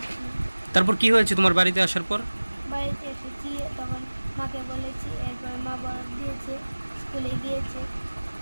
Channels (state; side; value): inverted; both; correlation -1.00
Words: তারপর কি হয়েছে তোমার বাড়িতে আসার পর? বাড়িতে এসেছি, তখন মাকে বলেছি, এরপর মা বরফ দিয়েছে, স্কুলে গিয়েছে